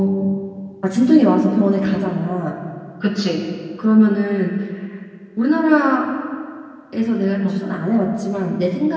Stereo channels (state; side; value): identical; both; correlation 1.00